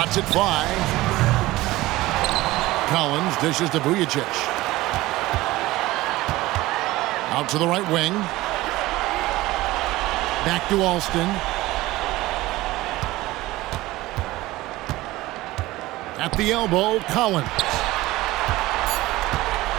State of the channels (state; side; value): quieter; left; 18.2 dB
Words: it fly. Collins dishes to Vujacic. Out to the right wing. Back to Alston. At the elbow, Collins.